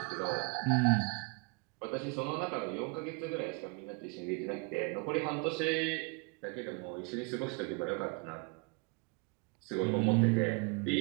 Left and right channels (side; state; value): left; quieter; 30.6 dB